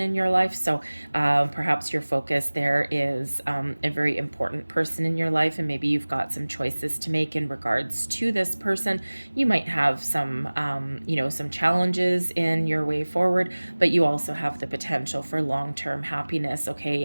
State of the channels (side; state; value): both; inverted; correlation -1.00